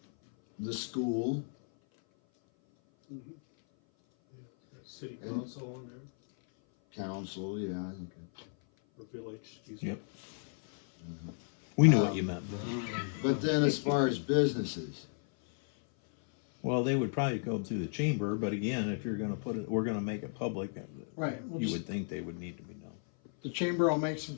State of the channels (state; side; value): silent; right; 55 dB below the other